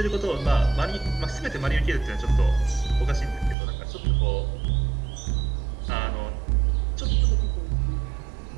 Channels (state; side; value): drops out; left; at 3.6 s